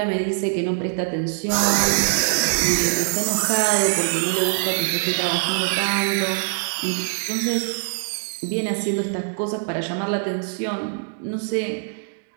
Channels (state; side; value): silent; left; digital silence